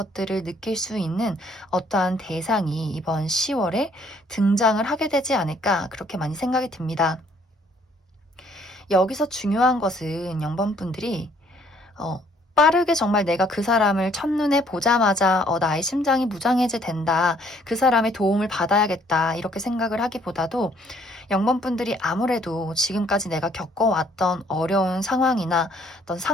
느낄 수 있는 어떠한 대상이 이번 10월에 등장을 하게 되지 않을까, 그렇게 많이 생각이 듭니다. 여기서 중요한 것은 0번분들이 빠르게 정말 내가 그 사람을 첫눈에 보자마자 나의 심장이 무장해제 된다, 그 사람의 도움을 받아야겠다, 이렇게 생각을 하기보다도 0번분들이 아무래도 지금까지 내가 겪어왔던 어려운 상황이나 어떤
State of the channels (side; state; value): both; normal; correlation 0.63